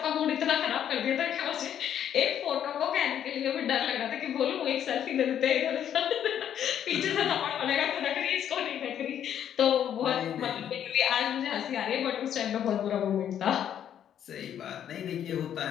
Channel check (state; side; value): quieter; right; 9.7 dB